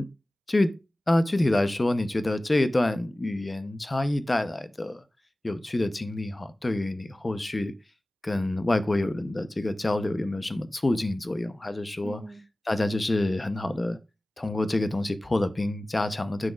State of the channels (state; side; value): normal; both; correlation 0.97